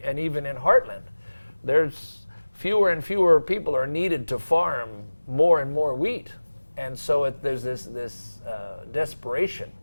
even in Heartland, there's fewer and fewer people are needed to farm more and more wheat. And so there's this desperation.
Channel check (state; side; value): inverted; both; correlation -1.00